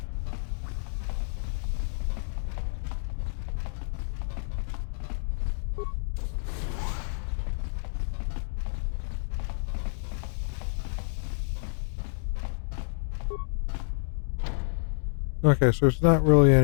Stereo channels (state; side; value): silent; right; digital silence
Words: Okay, so there's not really